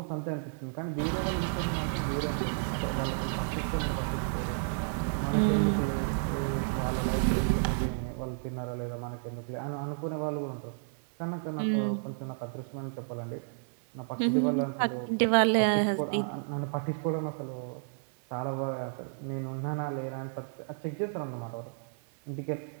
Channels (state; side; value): silent; left; 57 dB below the other